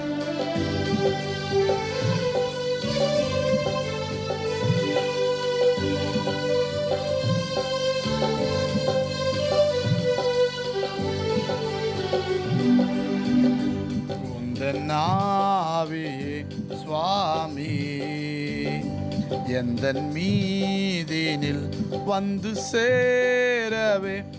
ஆவியே சுவாமி எந்தன் மீதினில் வந்து சேரவே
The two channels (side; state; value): both; identical; correlation 1.00